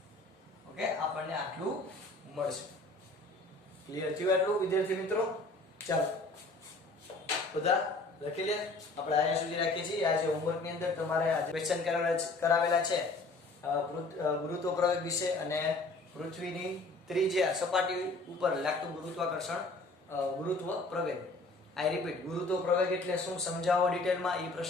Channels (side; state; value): right; quieter; 3.1 dB